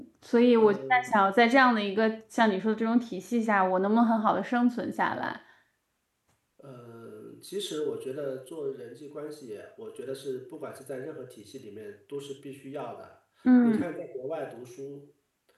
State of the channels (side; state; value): both; identical; correlation 1.00